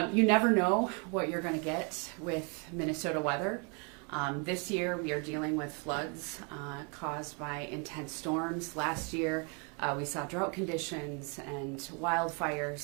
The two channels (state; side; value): quieter; left; 35.3 dB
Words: You never know what you're going to get with Minnesota weather. This year, we are dealing with floods caused by intense storms. Last year, we saw drought conditions and